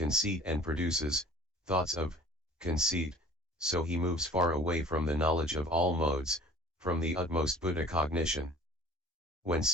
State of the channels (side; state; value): both; normal; correlation 0.47